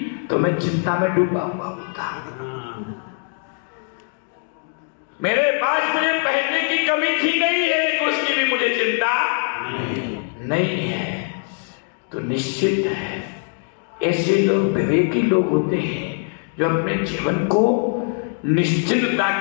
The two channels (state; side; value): silent; right; 56 dB below the other